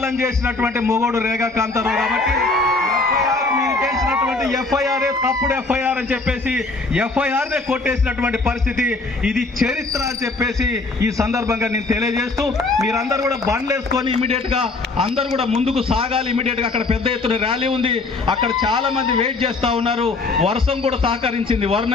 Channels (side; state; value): right; quieter; 3.5 dB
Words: చేసినటువంటి మొగోడు రేగా కాంతారావు కాబట్టి ఎఫ్ఐఆర్ తప్పుడు ఎఫ్ఐఆర్ అని చెప్పేసి ఎఫ్ఐఆర్ నే కొట్టేసినటువంటి పరిస్థితి. ఇది చరిత్ర అని చెప్పేసి ఈ సందర్భంగా నేను తెలియజేస్తూ, మీరందరూ కూడా బండ్లు వేసుకొని ఇమీడియట్ గా అందరూ కూడా ముందుకు సాగాలి. ఇమీడియట్ గా అక్కడ పెద్ద ఎత్తున ర్యాలీ ఉంది. అక్కడ చాలా మంది వెయిట్ చేస్తా ఉన్నారు. వర్షం కూడా సహకరించింది,